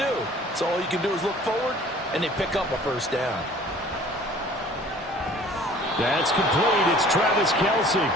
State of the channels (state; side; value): normal; both; correlation 0.50